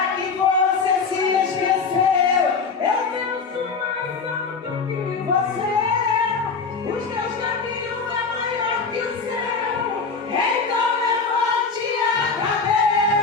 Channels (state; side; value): quieter; right; 4.9 dB